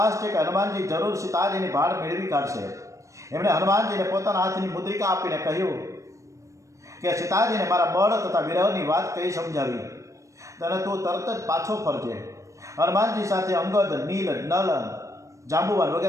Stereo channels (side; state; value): left; late; 0.15 ms